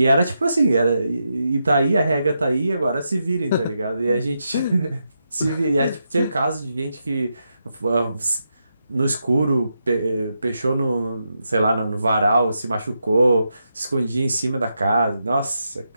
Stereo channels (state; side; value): inverted; both; correlation -0.85